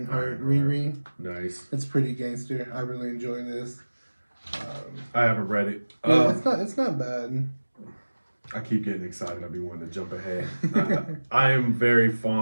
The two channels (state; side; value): inverted; both; correlation -1.00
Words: Riri. Nice. It's pretty gangster. I really enjoy this. I haven't read it. Yeah, it's not bad. I keep getting excited. I'll be wanting to jump ahead. I am very